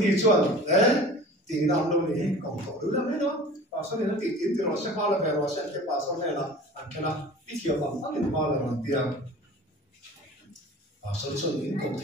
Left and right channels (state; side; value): normal; both; correlation 0.41